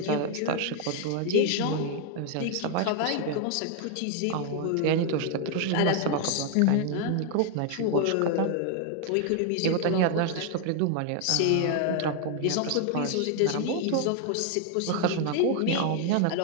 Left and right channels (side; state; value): both; different; correlation 0.00